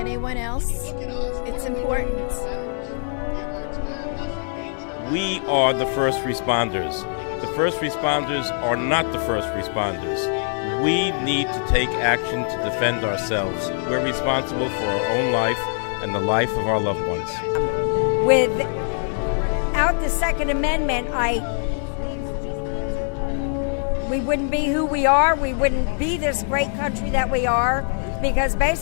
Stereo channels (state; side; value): silent; right; digital silence